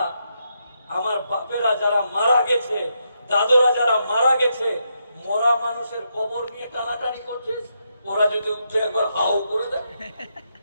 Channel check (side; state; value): both; inverted; correlation -0.81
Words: আমার বাপেরা যারা মারা গেছে, দাদুরা যারা মারা গেছে, মরা মানুষের কবর নিয়ে টানাটানি করছিস, ওরা যদি উঠে একবার হাও করে দেয়